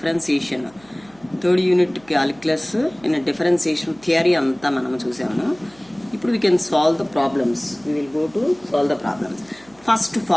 Third unit calculus in a differentiation theory anta manam chusamu. Now we can solve the problems. We will go to solve the problems. First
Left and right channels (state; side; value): noise; right; hum, 29 dB below the sound